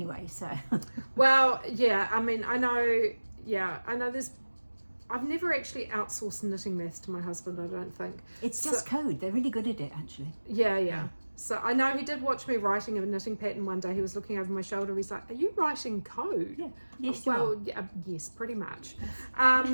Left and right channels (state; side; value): inverted; both; correlation -1.00